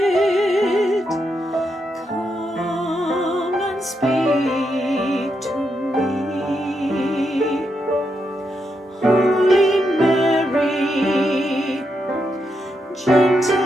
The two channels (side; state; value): both; normal; correlation 0.82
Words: come and speak to me.